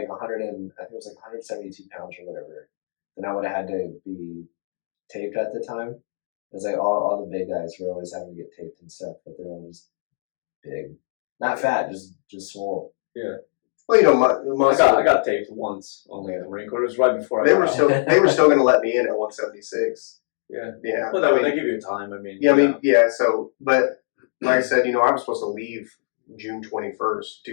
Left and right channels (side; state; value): right; silent; digital silence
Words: 100 and I think it was like 172 pounds or whatever. Then I would have had to be taped at the time. It was like all the big guys were always having to get taped and stuff, but they were all just big, not fat, just swole. Yeah. Well, you know, my I got taped once only at the Marine Corps. It was right before I they got were out. still they were still going to let me in at 176. Yeah. Yeah. Well, they give you time. I mean. Yeah, I mean, yeah. So, but like I said, you know, I was supposed to leave June 21st,